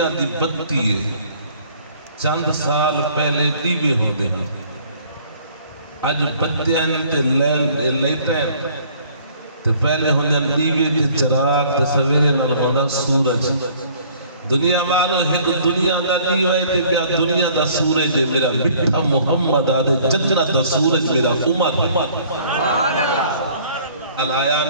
دی بتی ہے. چند سال پہلے دیوے ہو دے ہیں آج بتیاں تے لیٹیں تے پہلے ہوندے دیوے تے چراغ تے سویرے نال ہوندا سورج. دنیا والو ہند دنیا دا دیوے تے بیا دنیا دا سورج ہے میرا مٹھا محمد آدھے چچڑا دا سورج میرا عمر. علایا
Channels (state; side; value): inverted; both; correlation -0.56